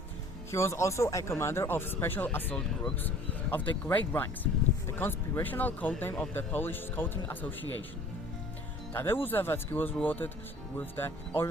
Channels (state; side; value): normal; both; correlation 0.50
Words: He was also a commander of special assault groups of the Great Ranks, the conspirational codename of the Polish Scouting Association. Tadeusz Zawadzki was rewarded with the